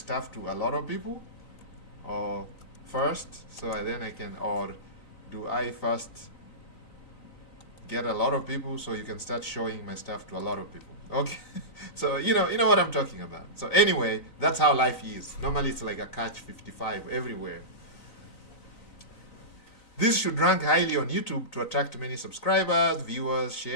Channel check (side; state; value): right; late; 3.9 ms